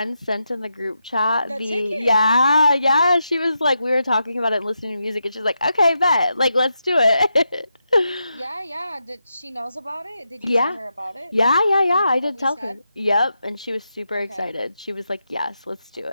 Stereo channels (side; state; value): both; inverted; correlation -0.86